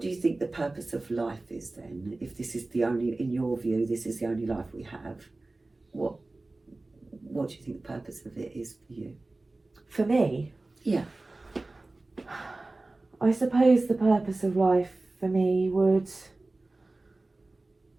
do you think the purpose of life is then? If this is the only, in your view, this is the only life we have, what do you think the purpose of it is for you? For me? Yeah. I suppose the purpose of life for me would...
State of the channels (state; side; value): quieter; left; 3.1 dB